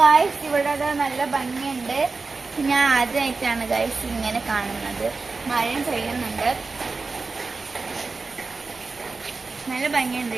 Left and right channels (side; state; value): left; quieter; 4.1 dB